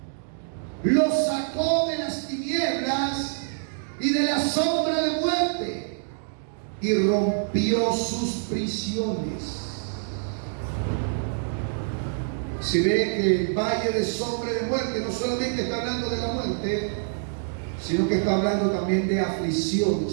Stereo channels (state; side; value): silent; left; digital silence